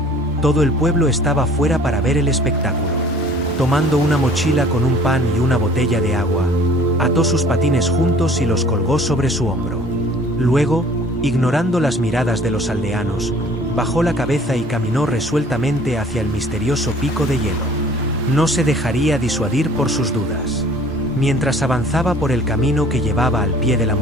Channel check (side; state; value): both; normal; correlation 0.51